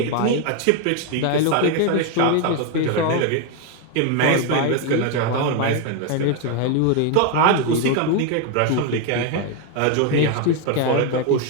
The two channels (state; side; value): different; both; correlation 0.01